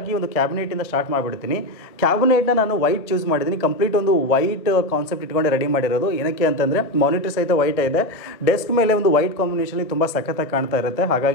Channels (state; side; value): late; right; 1.6 ms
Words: ಒಂದು ಕ್ಯಾಬಿನೆಟಿಂದ ಸ್ಟಾರ್ಟ್ ಮಾಡಿಬಿಡ್ತೀನಿ. ಕ್ಯಾಬಿನೆಟ್ನ ನಾನು ವೈಟ್ ಚೂಸ್ ಮಾಡಿದ್ದೀನಿ. ಕಂಪ್ಲೀಟ್ ಒಂದು ವೈಟ್ ಕಾನ್ಸೆಪ್ಟ್ ಇಟ್ಕೊಂಡೆ ರೆಡಿ ಮಾಡಿರೋದು. ಏನಕ್ಕೆ ಅಂತಂದರೆ ಮಾನಿಟರ್ ಸಹಿತ ವೈಟ್ ಇದೆ, ಡೆಸ್ಕ್ ಮೇಲೆ ಒಂದು ವೈಟ್ ಕಾಂಬಿನೇಷನಲ್ಲಿ ತುಂಬ ಸಖತ್ತಾಗಿ ಕಾಣ್ತಾ ಇರುತ್ತೆ.